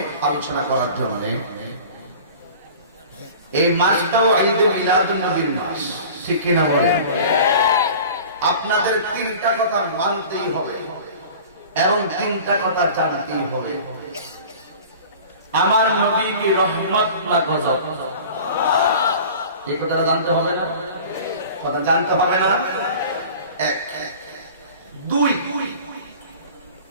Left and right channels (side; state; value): both; inverted; correlation -0.41